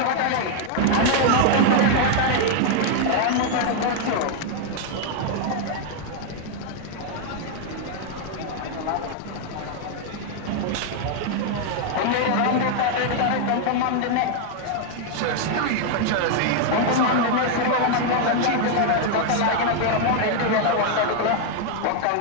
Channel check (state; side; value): different; both; correlation 0.00